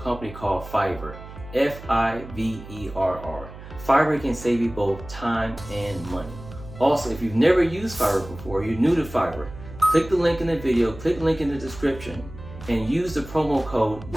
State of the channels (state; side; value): noise; right; hum, 15 dB below the sound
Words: company called Fiverr, Fiverr. Fiverr can save you both time and money. Also, if you've never used Fiverr before, you're new to Fiverr, click the link in the video, click the link in the description, and use the promo code